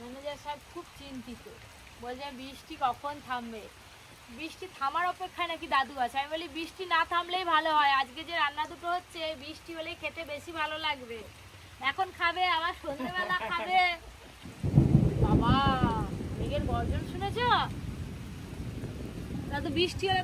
খুব চিন্তিত। বলছে বৃষ্টি কখন থামবে। বৃষ্টি থামার অপেক্ষায় নাকি দাদু আছে। আমি বলি বৃষ্টি না থামলেই ভালো হয়। আজকে যে রান্না দুটো হচ্ছে বৃষ্টি হলেই খেতে বেশি ভালো লাগবে। এখন খাবে, আবার সন্ধ্যেবেলা খাবে। বাবা মেঘের গর্জন শুনেছ? দাদু বৃষ্টি হলে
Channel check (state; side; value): identical; both; correlation 1.00